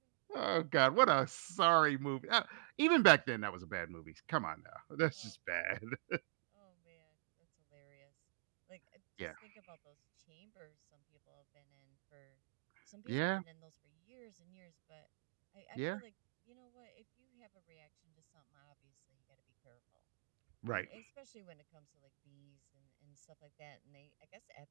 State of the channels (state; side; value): silent; left; digital silence